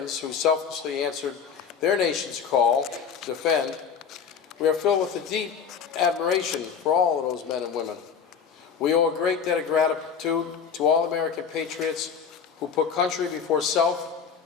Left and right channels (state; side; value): quieter; right; 6.8 dB